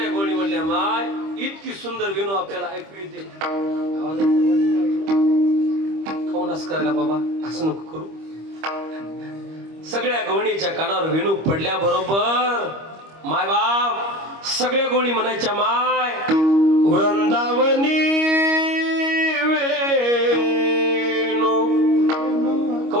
गवळणी म्हणल्या, माय इतकी सुंदर वेणू आपल्याला ऐकू येते. खाऊनच करायला बाबा, असं नको करू. सगळ्या गवळणीच्या कानावर वेणू पडल्या बरोबर माय बाप सगळ्या गवळणी म्हणायच्या, माय वृंदावनी वेणू.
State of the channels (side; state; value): left; late; 25 ms